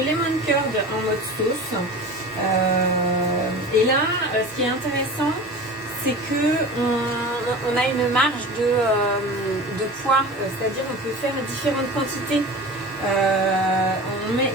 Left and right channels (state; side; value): noise; left; hum, 28 dB below the sound